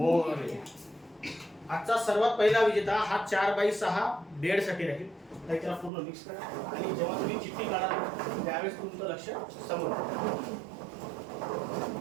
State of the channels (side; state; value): left; drops out; at 5.9 s